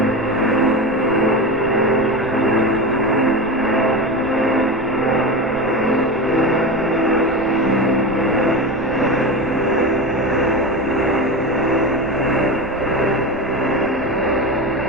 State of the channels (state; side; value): noise; right; rumble, 18 dB below the sound